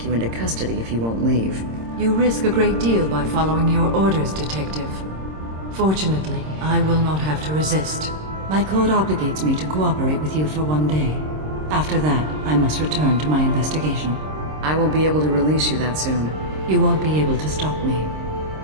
you into custody if you won't leave. You risk a great deal by following your orders, Detective. Fortunately, I will not have to resist. My code obligates me to cooperate with you for 1 day. After that, I must return to my investigation. I won't be able to release you that soon. You won't be able to stop me.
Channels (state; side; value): late; left; 26 ms